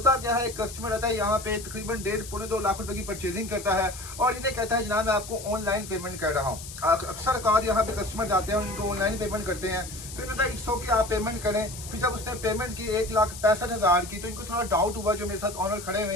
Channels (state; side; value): noise; left; hiss, 12 dB below the sound